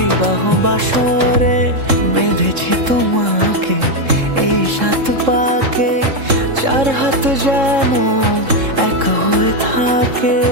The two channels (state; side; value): late; left; 3.7 ms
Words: বাসরে। বেঁধেছি তোমাকে এই 7 পাকে, 4 হাত যেন এক হয়ে থাকে।